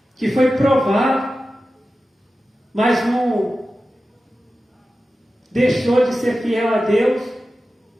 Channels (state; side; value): normal; both; correlation 0.94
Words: que foi provado, mas não deixou de ser fiel a Deus,